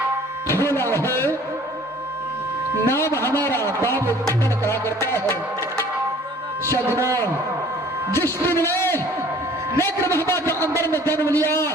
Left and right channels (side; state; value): both; normal; correlation 0.52